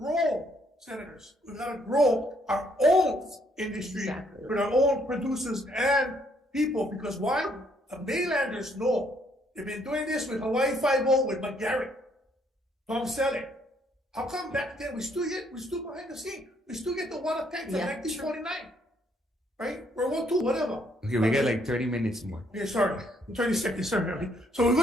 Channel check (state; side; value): normal; both; correlation 0.69